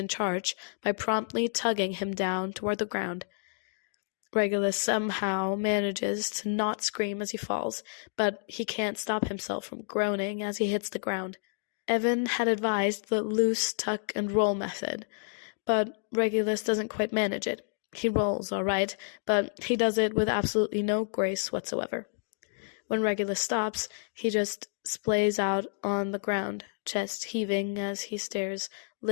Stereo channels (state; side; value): silent; right; digital silence